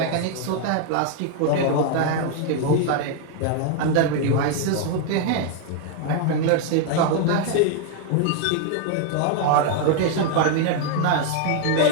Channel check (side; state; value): both; different; correlation 0.00